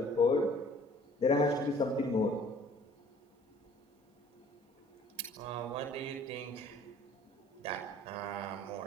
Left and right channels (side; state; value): both; normal; correlation 0.53